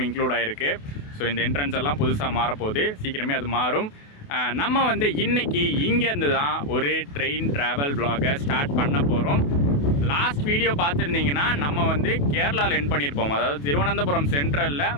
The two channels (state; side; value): late; right; 28 ms